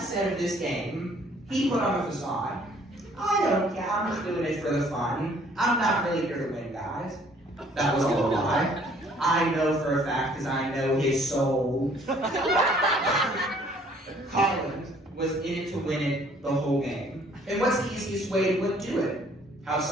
of this game, he put on a facade. I don't care, I'm just doing it for the fun. I'm not really here to win, guys. That was all a lie. I know for a fact, because I know his soul. Colin was in it to win it the whole game. And what's the easiest way to do it? Have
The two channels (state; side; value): normal; both; correlation 0.59